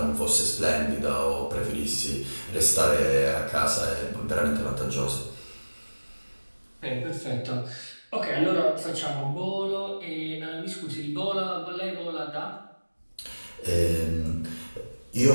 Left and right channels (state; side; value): inverted; both; correlation -1.00